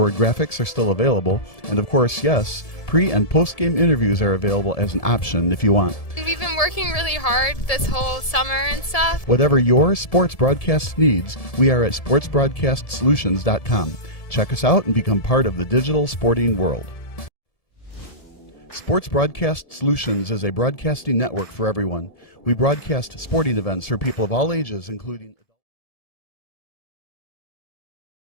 graphics are still available, and of course, yes, pre- and post-game interviews are available as an option if you want. We've been working really hard this whole summer and stuff. Whatever your sports broadcast needs, we are at sportsbroadcastsolutions.com. Check us out and become part of the digital sporting world. Sports Broadcast Solutions is a broadcasting network for everyone. We broadcast sporting events for people of all ages, including...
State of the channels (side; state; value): right; late; 1.7 ms